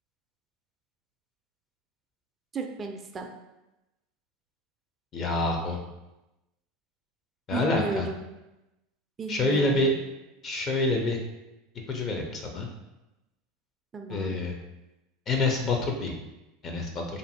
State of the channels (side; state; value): both; normal; correlation 0.35